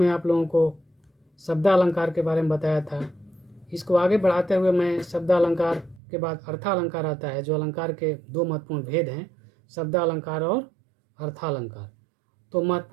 आप लोगों को शब्दालंकार के बारे में बताया था। इसको आगे बढ़ाते हुए मैं शब्दालंकार के बाद अर्थालंकार आता है, जो अलंकार के दो महत्वपूर्ण भेद हैं, शब्दालंकार और अर्थालंकार। तो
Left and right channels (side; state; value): left; drops out; at 6.0 s